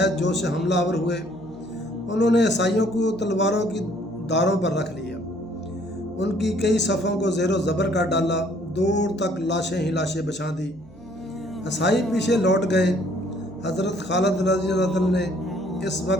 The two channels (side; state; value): right; noise; hum, 24 dB below the sound